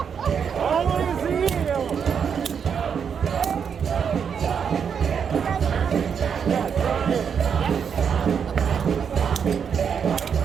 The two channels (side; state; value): left; quieter; 7.1 dB